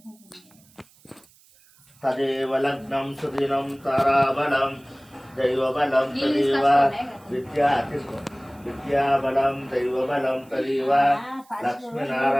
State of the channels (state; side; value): noise; right; hiss, 29 dB below the sound